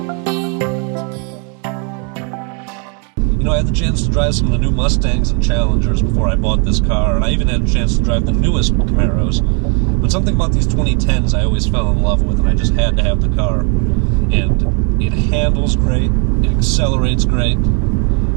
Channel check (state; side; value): quieter; left; 38.0 dB